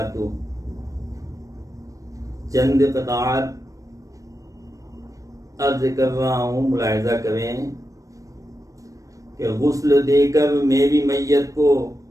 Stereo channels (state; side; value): late; left; 0.16 ms